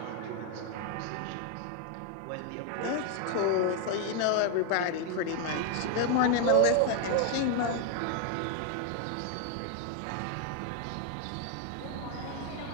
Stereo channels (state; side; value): different; both; correlation 0.00